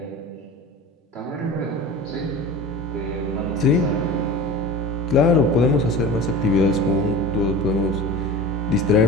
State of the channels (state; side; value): normal; both; correlation 0.34